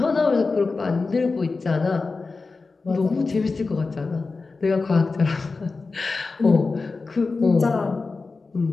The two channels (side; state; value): right; quieter; 4.0 dB